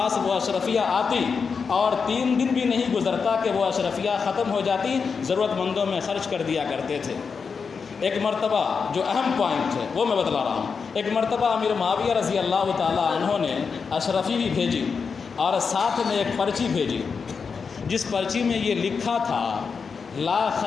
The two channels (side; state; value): right; quieter; 5.5 dB